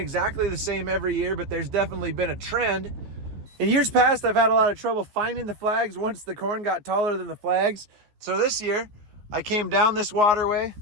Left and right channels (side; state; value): left; late; 14 ms